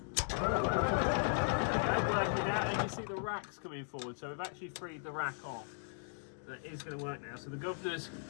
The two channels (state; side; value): silent; right; digital silence